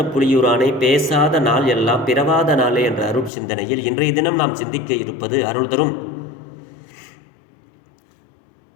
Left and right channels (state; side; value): drops out; right; at 3.3 s